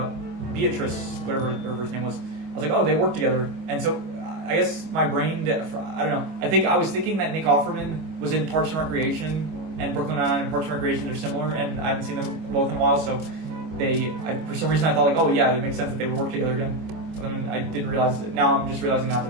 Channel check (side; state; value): left; late; 25 ms